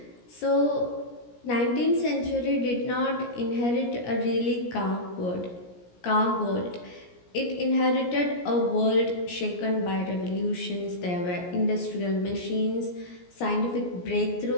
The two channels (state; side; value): late; right; 17 ms